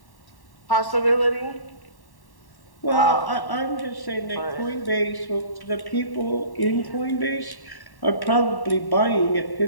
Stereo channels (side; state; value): right; late; 1.1 ms